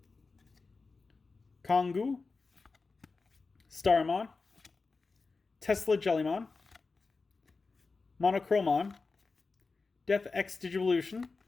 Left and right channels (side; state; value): right; quieter; 4.1 dB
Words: Kongu, Starmon, Tesla Jellymon, Monochromon, Death X Digivolution,